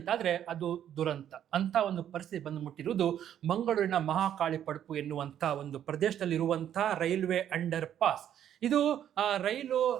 ಅದು ದುರಂತ. ಅಂತ ಒಂದು ಪರಿಸ್ಥಿತಿ ಬಂದು ಮುಟ್ಟಿರುವುದು ಮಂಗಳೂರಿನ ಮಹಾಕಾಳಿ ಪಡುಪು ಎನ್ನುವಂಥ ಒಂದು ಪ್ರದೇಶದಲ್ಲಿರುವಂಥ ರೈಲ್ವೆ ಅಂಡರ್ ಪಾಸ್. ಇದು ರೈಲು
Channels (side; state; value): left; quieter; 10.3 dB